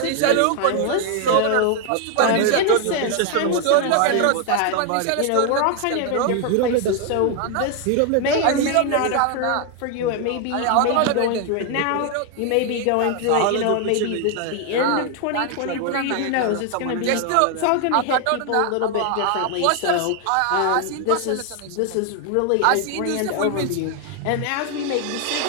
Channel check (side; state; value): both; different; correlation 0.00